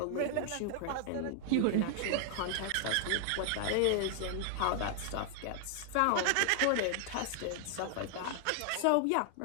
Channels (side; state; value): both; different; correlation 0.00